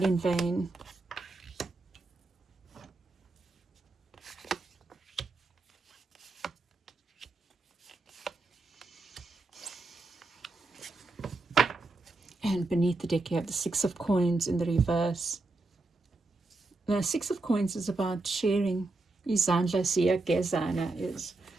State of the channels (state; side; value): quieter; left; 3.2 dB